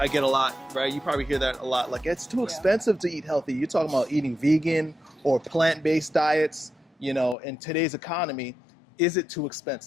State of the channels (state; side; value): drops out; right; at 7.4 s